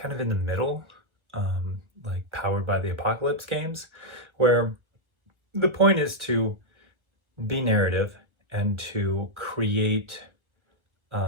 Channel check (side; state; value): left; late; 1.4 ms